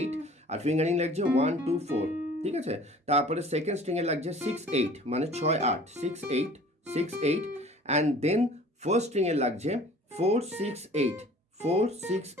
আর ফিঙ্গারিং লাগছে 1 2 4, ঠিক আছে। তারপরে সেকেন্ড স্ট্রিংয়ে লাগছে 6 8 মানে 6 8, 6 8 6 8, অ্যান্ড দেন ফার্স্ট স্ট্রিংয়ে লাগছে 4 6 8, 4 6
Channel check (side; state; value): both; normal; correlation 0.48